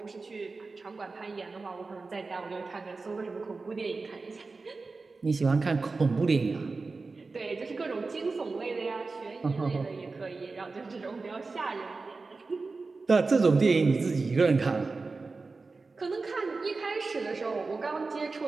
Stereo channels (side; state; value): left; quieter; 3.9 dB